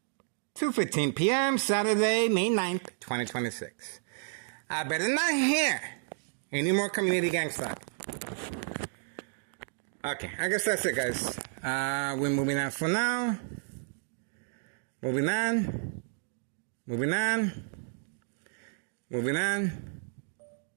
p.m. Saturday, May 9th, 2026. I better not hear any more community gang stuff. Okay, I guess that's it, guys. We're moving on for now. Moving on. Moving on. Moving on.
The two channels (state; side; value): silent; left; digital silence